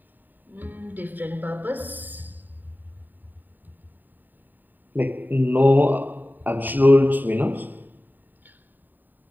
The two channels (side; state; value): left; late; 0.089 ms